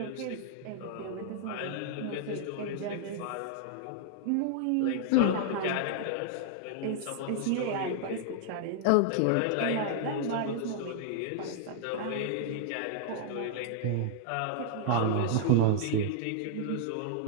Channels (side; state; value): both; different; correlation -0.01